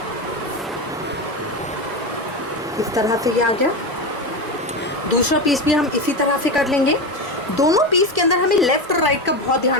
इस तरह से ये आ गया। दूसरा पीस भी हम इसी तरह से कर लेंगे। दोनों पीस के अंदर हमें लेफ्ट और राइट का बहुत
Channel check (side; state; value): both; normal; correlation 0.18